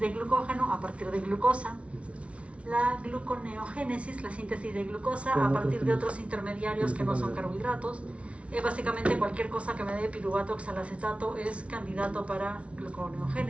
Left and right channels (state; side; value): late; left; 0.062 ms